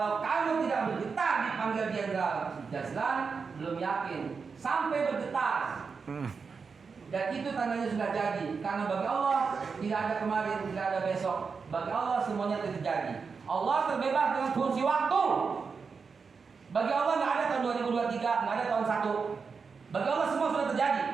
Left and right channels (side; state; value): left; quieter; 5.3 dB